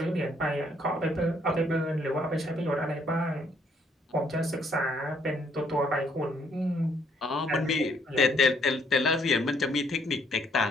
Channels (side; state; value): both; normal; correlation 0.67